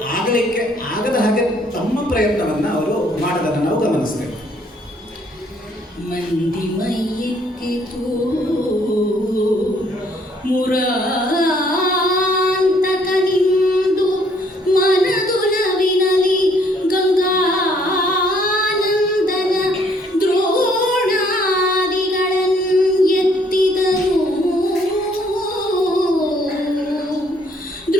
ಆಗಲಿಕ್ಕೆ ಆಗದ ಹಾಗೆ ತಮ್ಮ ಪ್ರಯತ್ನವನ್ನು ಅವರು ಮಾಡೋದನ್ನು ನಾವು ಗಮನಿಸ್ತೇವೆ. ಮಂದಿ ಮೈಯಿಕ್ಕಿತು ಮುರಾಂತಕನಿಂದು ಮನದುಲವಿನಲಿ ಗಂಗಾನಂದನ ದ್ರೋಣಾದಿಗಳನ್ನೆತ್ತಿದರು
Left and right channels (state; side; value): normal; both; correlation 0.64